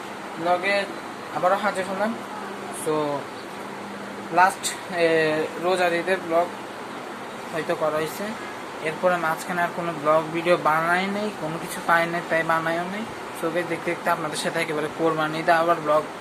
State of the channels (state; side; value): identical; both; correlation 1.00